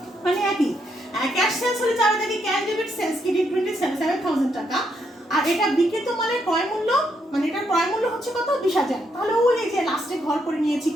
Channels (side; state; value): both; normal; correlation 0.77